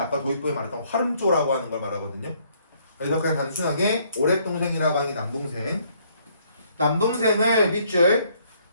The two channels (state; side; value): inverted; both; correlation -0.66